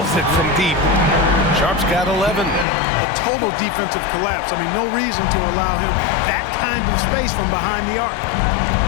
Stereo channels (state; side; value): drops out; right; at 2.7 s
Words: it from deep. Sharp's got 11. A total defensive collapse. I mean, no reason to allow him that kind of space from behind the arc.